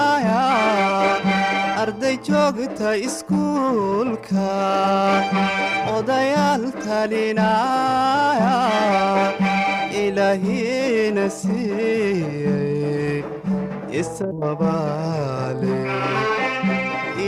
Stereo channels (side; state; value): both; identical; correlation 1.00